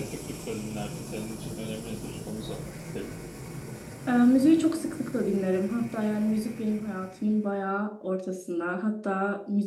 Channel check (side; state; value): both; identical; correlation 1.00